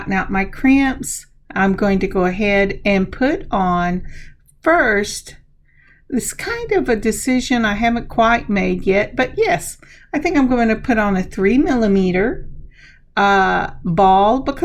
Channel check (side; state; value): both; identical; correlation 1.00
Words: out my crimps, I'm going to go ahead and put on first. This kind of a decision I haven't quite made yet, but yes, I think I'm going to put on a 3mm ball